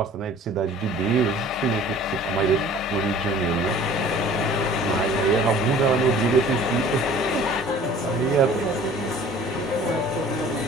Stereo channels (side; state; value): both; normal; correlation 0.48